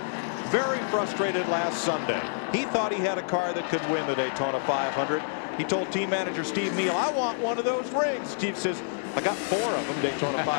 very frustrated last Sunday. He thought he had a car that could win the Daytona 500. He told team manager Steve Neal, I want one of those rings. Steve says, I got 4 of them, Daytona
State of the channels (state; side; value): silent; right; digital silence